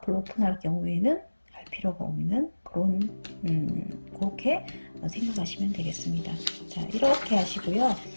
오픈할 경우에는 할 필요가 없는 그런 그렇게 생각하시면 되겠습니다. 자, 이렇게 하시고요.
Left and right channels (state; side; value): inverted; both; correlation -1.00